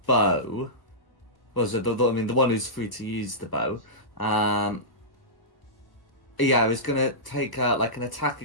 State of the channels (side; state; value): right; late; 1.1 ms